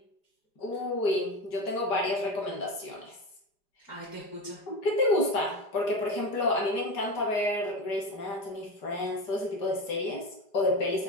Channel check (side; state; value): right; late; 5.0 ms